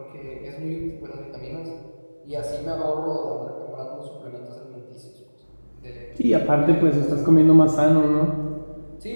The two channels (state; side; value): inverted; both; correlation -1.00